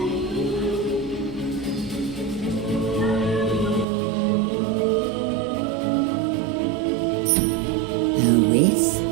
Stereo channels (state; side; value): drops out; left; at 3.9 s